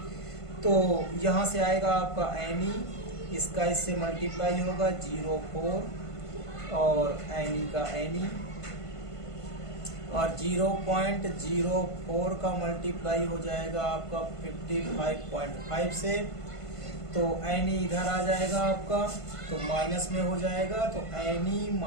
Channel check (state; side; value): late; right; 1.5 ms